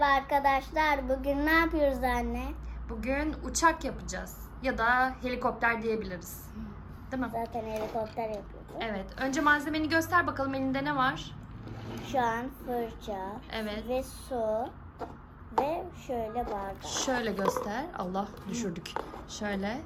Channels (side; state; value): both; identical; correlation 1.00